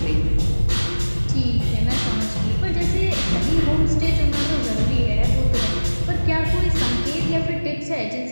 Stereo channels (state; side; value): inverted; both; correlation -1.00